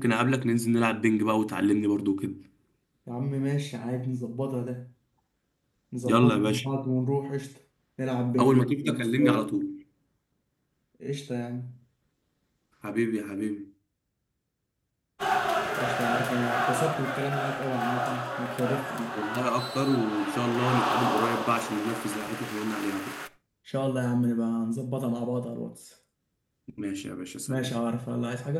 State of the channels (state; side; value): identical; both; correlation 1.00